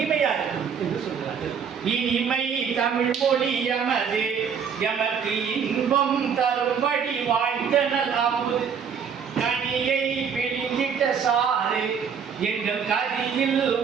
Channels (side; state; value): left; quieter; 6.9 dB